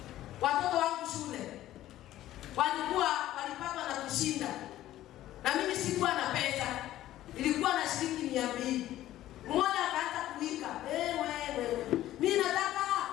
watoto wangu shule walipatwa na kushinda. Na mimi sikuwa na pesa. Ilikuwa na shilingi 200. Mmoja akaanza kuika, wewe. Mimi nataka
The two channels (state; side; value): quieter; right; 14.0 dB